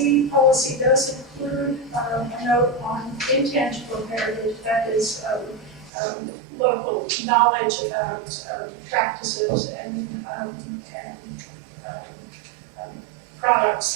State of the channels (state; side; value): drops out; left; at 5.9 s